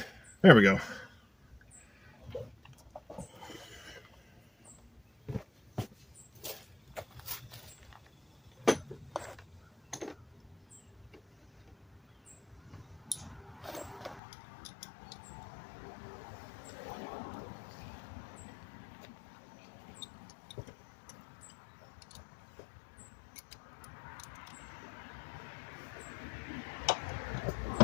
There we go.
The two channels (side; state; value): right; drops out; at 14.2 s